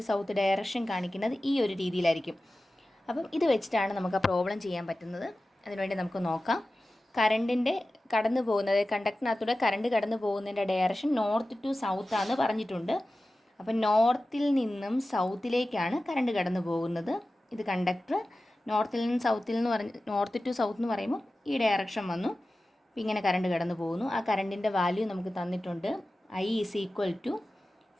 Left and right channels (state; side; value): normal; both; correlation 0.95